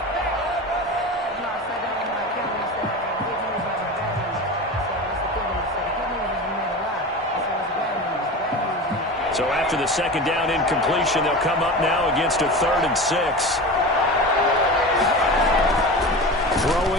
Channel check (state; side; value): normal; both; correlation 0.29